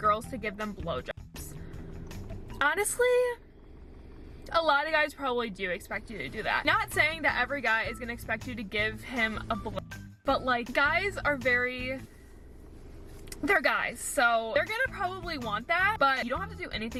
to give them blowjobs? Honestly, a lot of guys probably do expect you to do that. Not saying that every guy is gonna expect you to give him a blow, but like guys are they're guys, so they're gonna probably want that, but you don't have to do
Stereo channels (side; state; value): both; identical; correlation 1.00